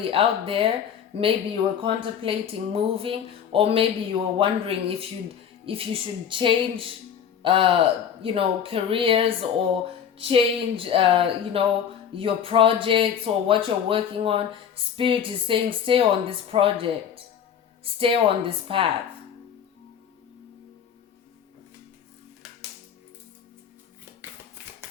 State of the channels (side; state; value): right; quieter; 8.3 dB